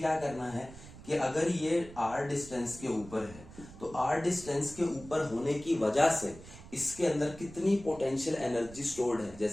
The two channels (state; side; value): noise; right; rumble, 17 dB below the sound